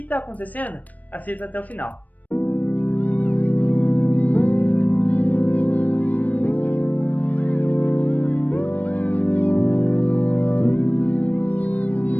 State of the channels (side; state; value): right; late; 0.077 ms